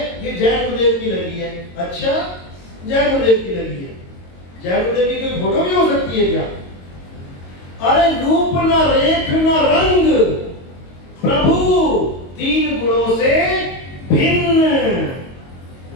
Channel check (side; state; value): right; late; 22 ms